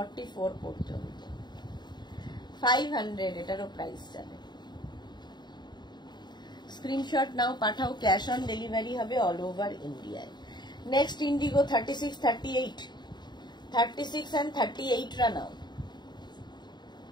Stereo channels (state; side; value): late; right; 0.21 ms